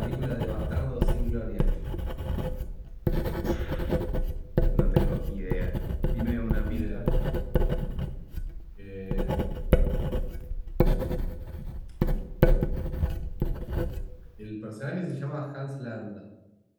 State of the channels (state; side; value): identical; both; correlation 1.00